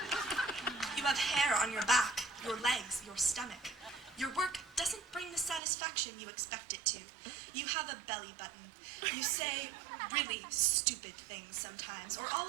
You have hair on your back, your legs, your stomach. Your work doesn't bring the satisfaction you expect it to. You have a belly button. You say really stupid things sometimes, or all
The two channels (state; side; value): drops out; left; at 5.6 s